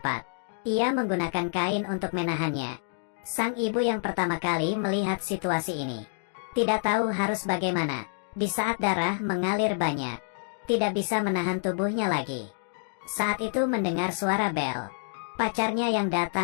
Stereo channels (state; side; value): silent; right; digital silence